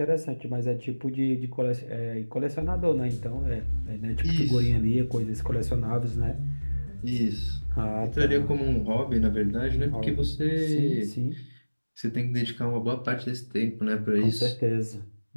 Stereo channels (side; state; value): both; inverted; correlation -1.00